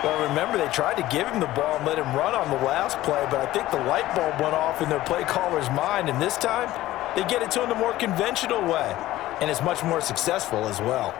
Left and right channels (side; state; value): right; quieter; 15.7 dB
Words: Well, remember, they tried to give him the ball and let him run on the last play, but I think the light bulb went off in their play caller's mind, and this time they get it to him the more conventional way, and it's much more successful as well.